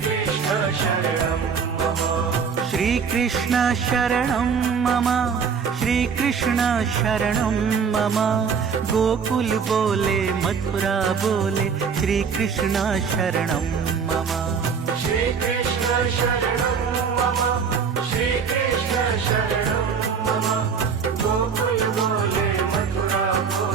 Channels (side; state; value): left; quieter; 6.2 dB